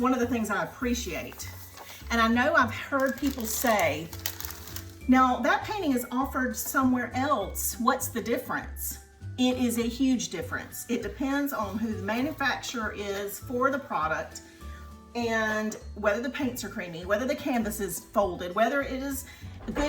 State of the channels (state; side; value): identical; both; correlation 1.00